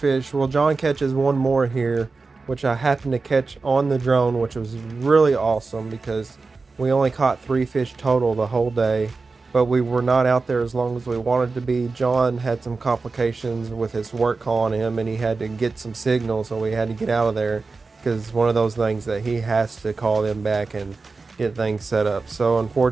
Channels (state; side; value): quieter; left; 4.1 dB